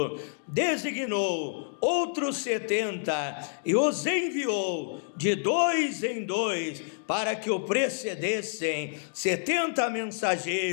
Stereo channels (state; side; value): silent; right; digital silence